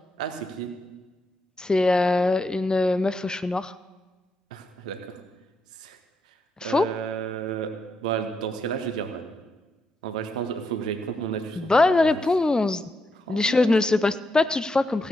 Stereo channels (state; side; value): normal; both; correlation 0.81